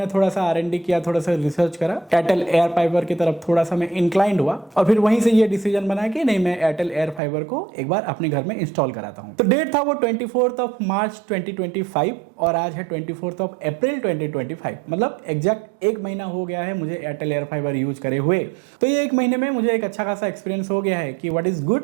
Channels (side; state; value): left; drops out; at 7.2 s